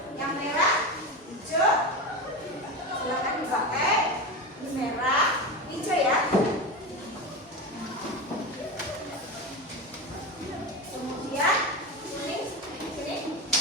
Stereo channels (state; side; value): normal; both; correlation 0.21